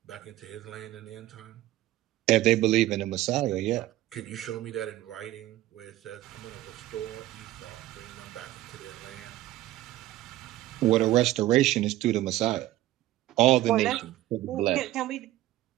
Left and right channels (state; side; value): quieter; left; 15.4 dB